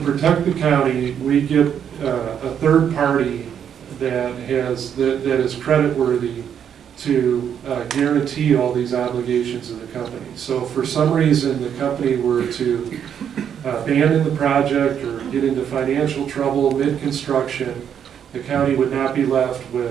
the county, we get a third party that is creditworthy to guarantee all these obligations of the company. So if for some reason the company were to abandon the project or get into financial trouble mid-construction, the county would not be left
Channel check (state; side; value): quieter; left; 8.6 dB